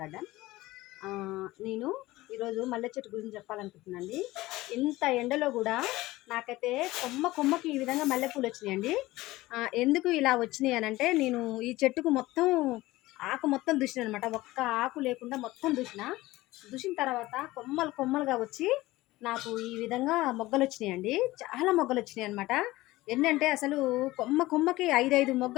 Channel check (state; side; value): quieter; right; 18.4 dB